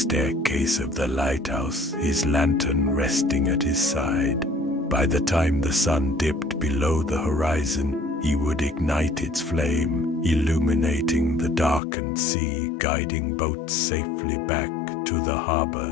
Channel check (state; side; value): drops out; right; at 11.8 s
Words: of the lighthouse, his lantern resting at his side. By the time the sun dipped below the horizon, he would ignite its flame, illuminating the darkened sea, guiding boats safely back to the